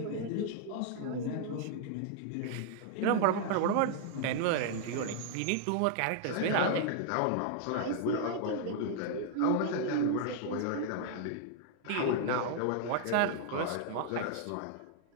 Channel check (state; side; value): different; both; correlation 0.00